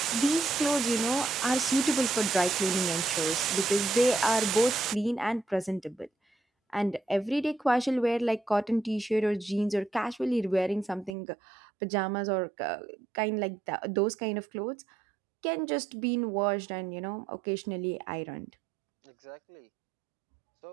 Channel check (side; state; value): left; drops out; at 11.2 s